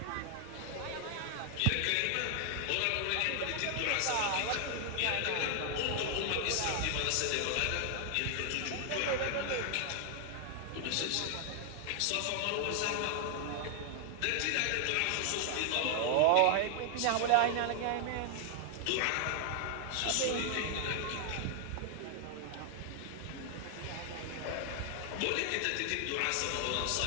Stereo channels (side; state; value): both; different; correlation 0.00